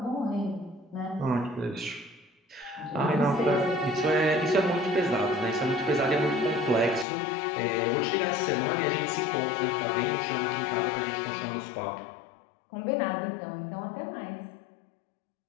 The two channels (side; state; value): right; drops out; at 7.1 s